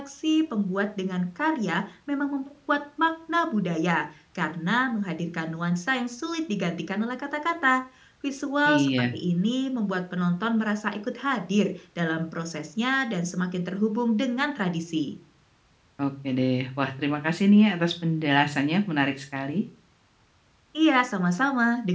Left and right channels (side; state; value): both; identical; correlation 1.00